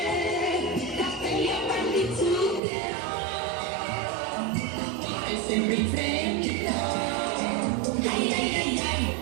capelli a pan di zucchero, cuore sempre in fremito. Ai ai ai ai,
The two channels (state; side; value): drops out; left; at 2.6 s